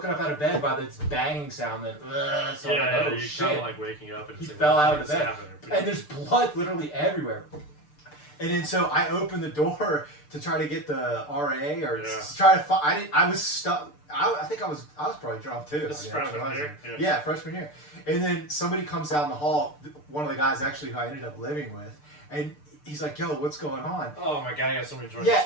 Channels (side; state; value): right; late; 6.7 ms